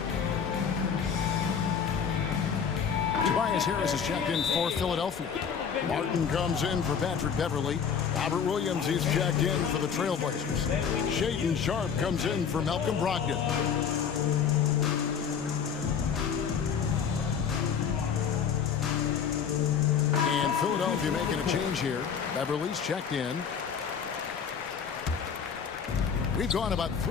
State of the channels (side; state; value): right; quieter; 7.1 dB